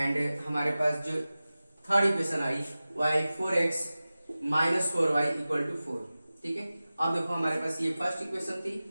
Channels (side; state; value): both; inverted; correlation -0.96